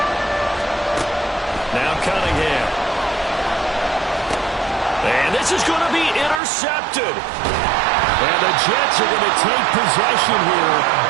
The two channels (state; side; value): drops out; left; at 6.4 s